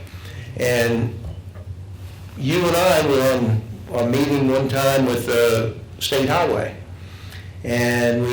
And you and I were on a meeting one time with the State Highway. And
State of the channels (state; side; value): identical; both; correlation 1.00